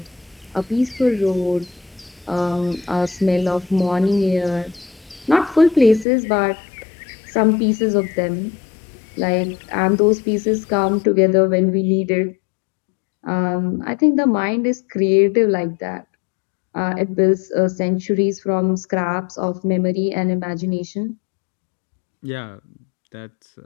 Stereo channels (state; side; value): drops out; right; at 6.1 s